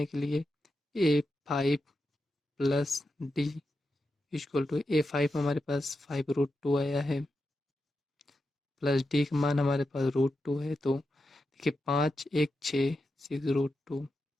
के लिए A5 plus D equal to A5 हमारे पास 5 √2 आया है प्लस D का मान हमारे पास √2 है, तो देखिए 5 1 6 6 √2।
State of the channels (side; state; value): both; normal; correlation 0.88